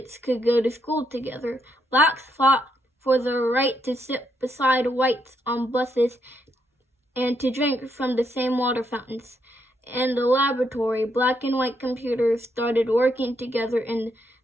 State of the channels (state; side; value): normal; both; correlation 0.77